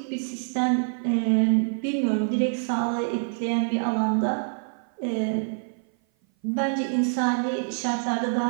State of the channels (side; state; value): left; silent; 56 dB below the other